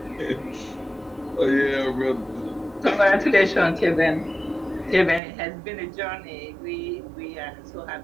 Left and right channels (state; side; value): drops out; left; at 5.2 s